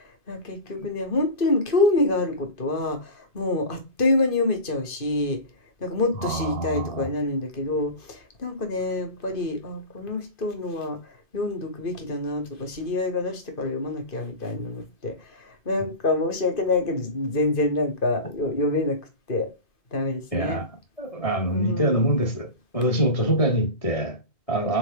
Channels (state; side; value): late; right; 2.5 ms